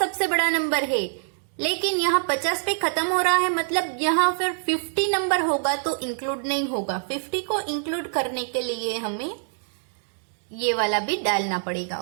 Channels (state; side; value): silent; left; digital silence